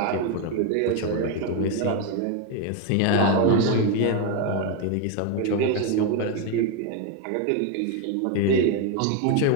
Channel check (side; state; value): both; different; correlation 0.02